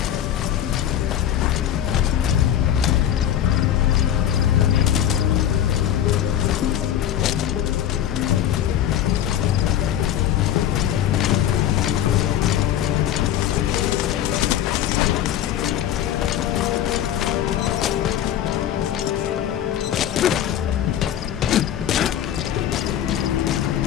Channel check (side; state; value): right; quieter; 10.9 dB